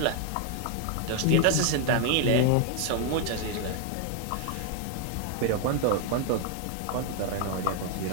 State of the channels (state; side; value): different; both; correlation 0.00